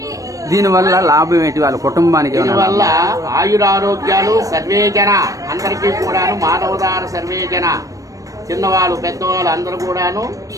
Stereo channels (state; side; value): late; left; 0.16 ms